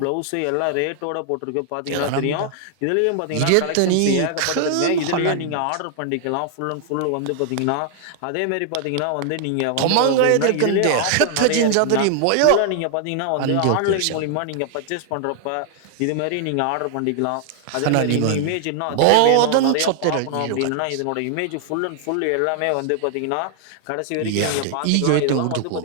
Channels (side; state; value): both; different; correlation 0.00